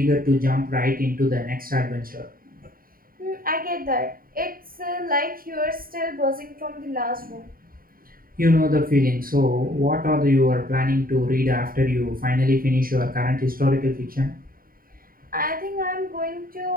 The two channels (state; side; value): late; left; 0.42 ms